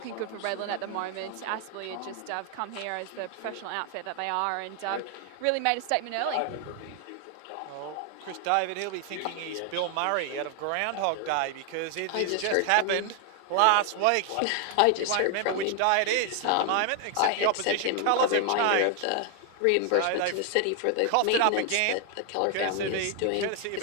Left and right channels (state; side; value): different; both; correlation 0.00